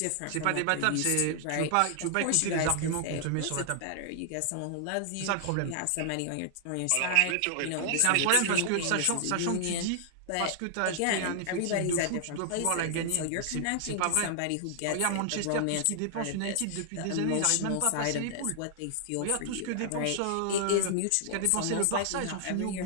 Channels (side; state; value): both; different; correlation 0.00